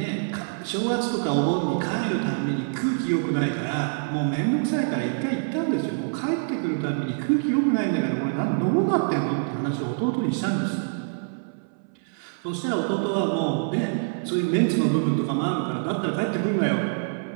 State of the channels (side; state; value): left; silent; 61 dB below the other